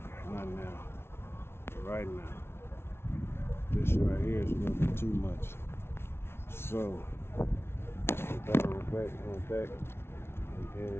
Not now. But right now. This right here is a little bit too much. So, put that on the back, and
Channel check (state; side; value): late; right; 0.12 ms